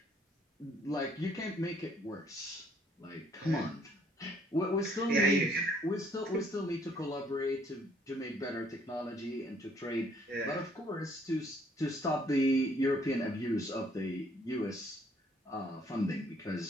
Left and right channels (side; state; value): both; normal; correlation 0.64